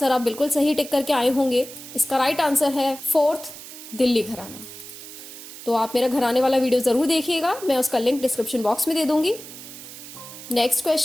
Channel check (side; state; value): right; noise; hiss, 14 dB below the sound